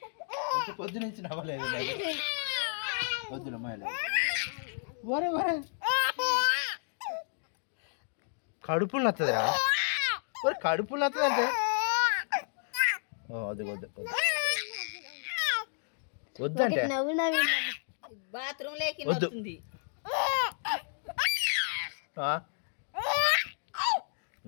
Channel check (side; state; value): right; silent; digital silence